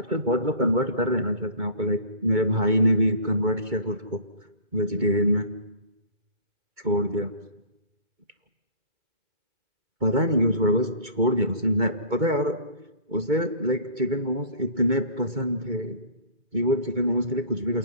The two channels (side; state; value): left; late; 2.2 ms